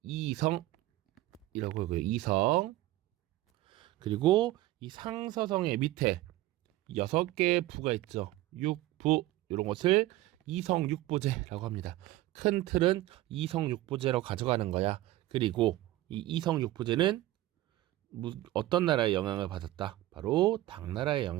이성이라고 하고요. 이성. 그리고 이 상서성의 밑에 6개의 부가 있죠. 육부, 이런 것을 이성육부제라고 합니다. 큰 틀은 이성육부제로 가져가는 거야. 그리고 이 이성육부제는 어떤 나라의 영향을 받았다? 바로 당나라의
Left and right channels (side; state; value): left; quieter; 16.2 dB